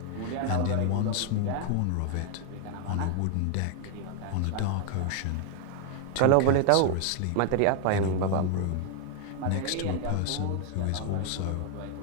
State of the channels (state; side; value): different; both; correlation 0.00